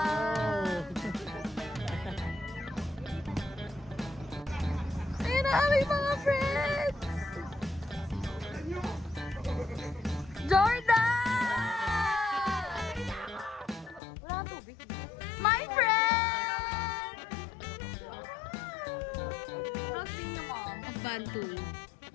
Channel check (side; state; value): right; drops out; at 14.0 s